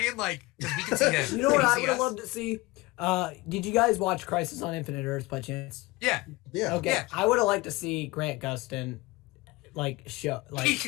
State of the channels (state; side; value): quieter; right; 21.3 dB